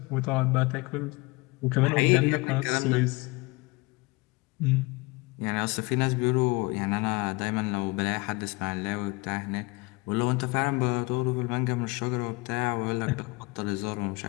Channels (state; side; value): quieter; right; 25.2 dB